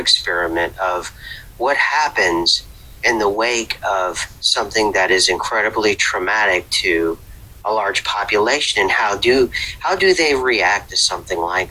of what happens in the wake of something that is incredibly traumatic to a large population, and how do they react to something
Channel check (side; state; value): both; identical; correlation 1.00